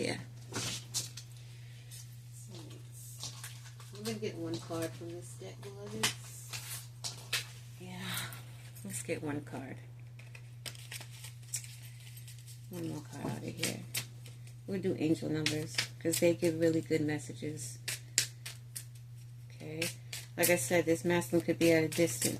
Soulmates. I'm going to get one card from this deck, beloveds. Yeah. Let's get one card. One more card out of here. We'll do angel numbers because they give really good messages. Okay. Like I said, this masculine could be at a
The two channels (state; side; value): identical; both; correlation 1.00